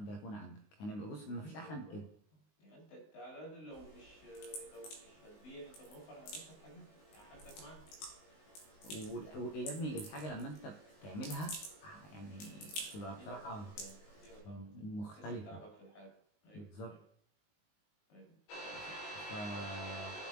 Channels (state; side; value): late; right; 19 ms